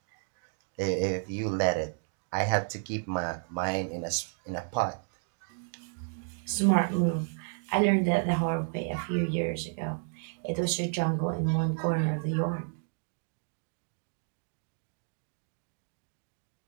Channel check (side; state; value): left; silent; 57 dB below the other